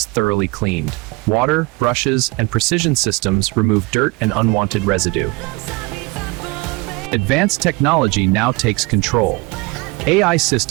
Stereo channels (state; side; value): quieter; left; 25.1 dB